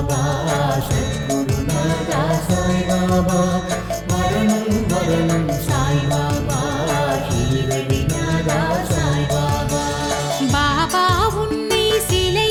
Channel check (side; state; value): both; identical; correlation 1.00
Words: சத்குருநாதா சாய்பாபா மரணம் மரணம் சாய்பாபா ஷீரடிநாதா சாய்பாபா பாபா உன்னை